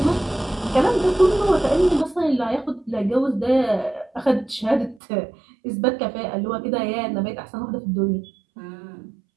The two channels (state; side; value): drops out; left; at 5.0 s